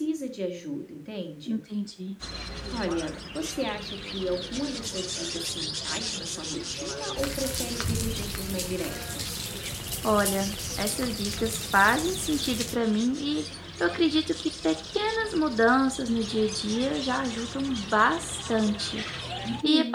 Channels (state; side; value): identical; both; correlation 1.00